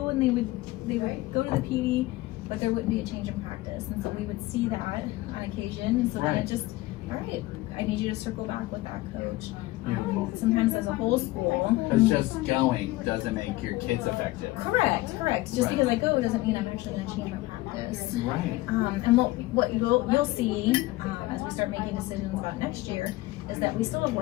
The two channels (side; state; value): right; quieter; 18.8 dB